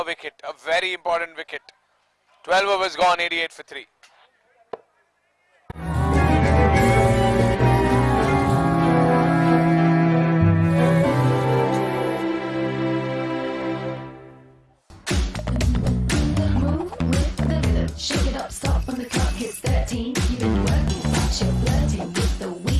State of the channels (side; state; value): both; identical; correlation 1.00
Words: wicket. A very important wicket. 12 overs gone, 88 for 3. Move with the rhythm, shake it up, stop when the clock hits 13. You've been working, but you're flirting with the